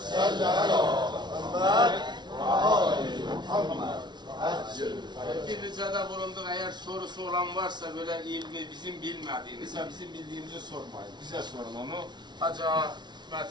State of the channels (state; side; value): late; left; 0.21 ms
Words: salli ala Muhammed ve ali Muhammed. Bir ricada bulunduk. Eğer sorusu olan varsa böyle ilmi bizim bilmediğimiz, bizim bildiğimizi sormayın. Bize sorun onu. Hacı